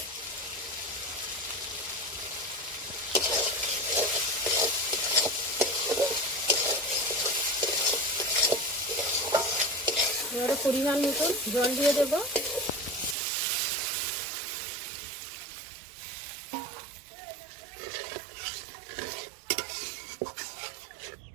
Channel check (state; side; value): drops out; left; at 13.2 s